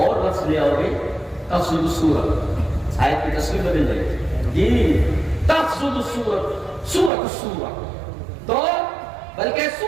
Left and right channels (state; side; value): drops out; left; at 7.1 s